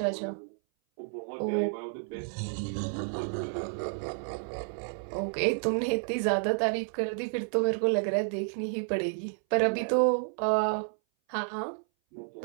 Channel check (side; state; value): left; silent; 57 dB below the other